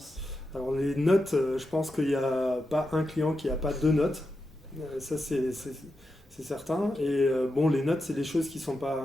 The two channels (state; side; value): normal; both; correlation 0.88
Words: Alors les notes, je pense qu'il n'y a pas un client qui n'a pas 2 notes. Ça c'est certain. Et les notes, c'est des choses qui sont